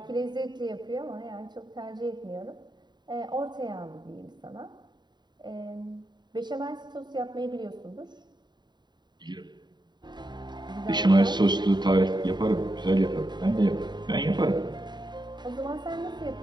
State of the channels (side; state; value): left; late; 0.21 ms